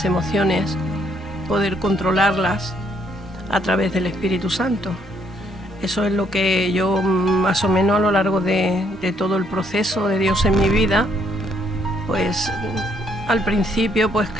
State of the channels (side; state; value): both; normal; correlation 0.70